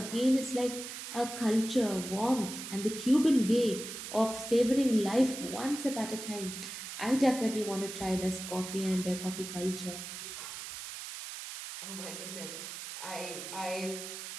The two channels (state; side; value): noise; right; hiss, 9 dB below the sound